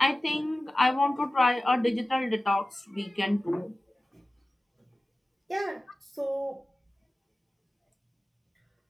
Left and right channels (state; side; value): normal; both; correlation 0.97